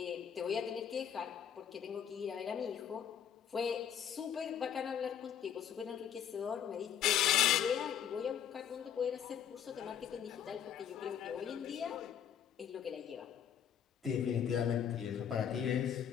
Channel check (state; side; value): quieter; right; 9.1 dB